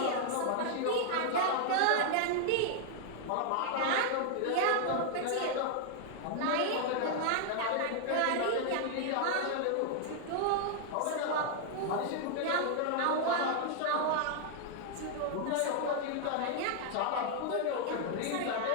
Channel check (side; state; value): both; different; correlation 0.00